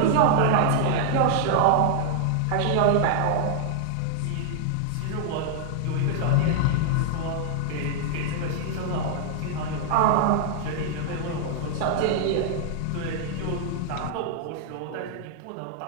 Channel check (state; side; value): different; both; correlation 0.00